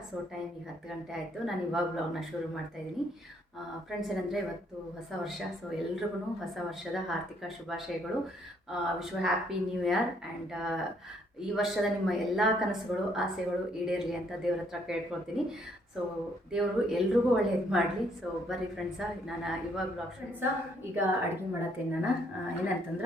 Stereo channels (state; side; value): normal; both; correlation 0.68